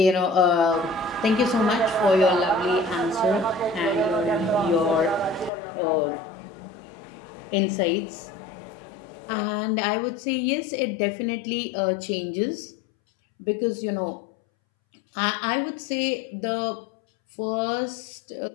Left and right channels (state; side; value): drops out; right; at 5.5 s